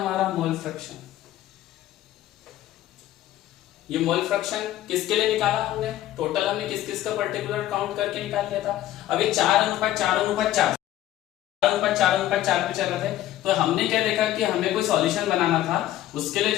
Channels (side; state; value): right; quieter; 13.8 dB